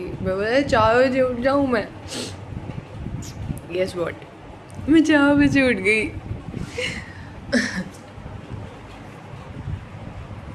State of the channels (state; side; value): identical; both; correlation 1.00